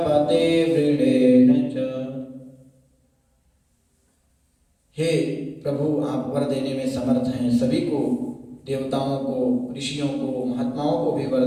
वृणेन च। हे प्रभु, आप वर देने में समर्थ हैं, सभी को, देवताओं को, ऋषियों को, महात्माओं को भी वर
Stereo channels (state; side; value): identical; both; correlation 1.00